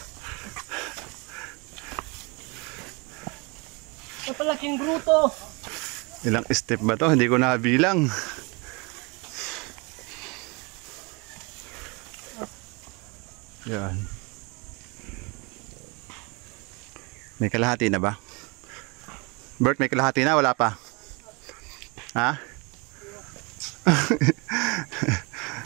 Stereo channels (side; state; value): left; quieter; 29.4 dB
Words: Napalaking gruto. Ilang step ba to? Hindi ko nabilang. Yan. May kalahati na ba? Bert, may kalahati na? Wala pa? Ha?